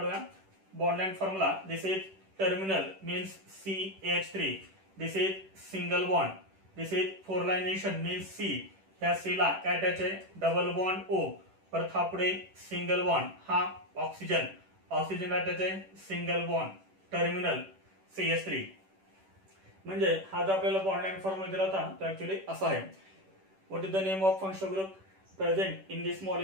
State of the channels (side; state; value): left; late; 10 ms